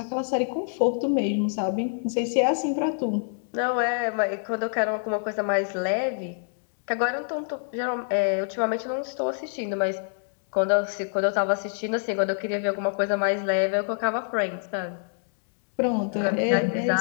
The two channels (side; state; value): right; silent; digital silence